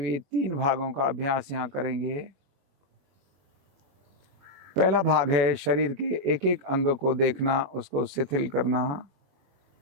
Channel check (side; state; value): left; late; 21 ms